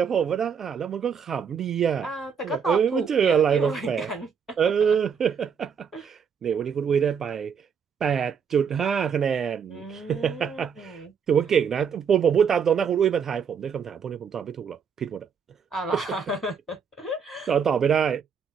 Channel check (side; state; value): left; quieter; 6.8 dB